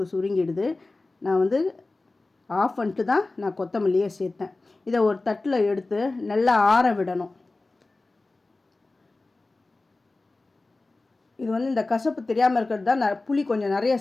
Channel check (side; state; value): right; quieter; 3.2 dB